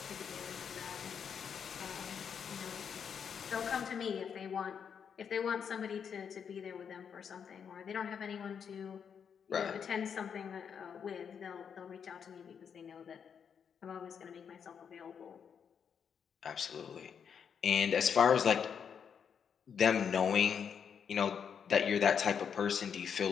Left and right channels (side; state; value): right; quieter; 7.3 dB